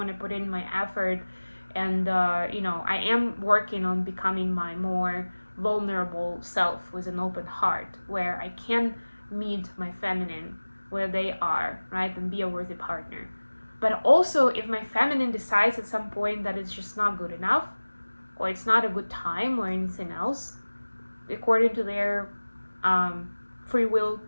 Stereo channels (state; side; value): inverted; both; correlation -1.00